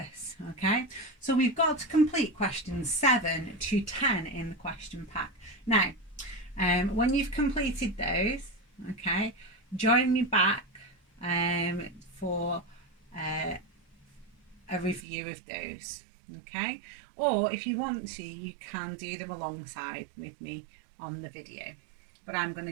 Okay, so we've got to complete questions 7 to 10 in the question pack. Now When you've completed those, okay, join me back for a review of those, okay? Or if you want to, you can do them alongside with me on the video, but I'm going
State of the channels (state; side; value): drops out; left; at 15.1 s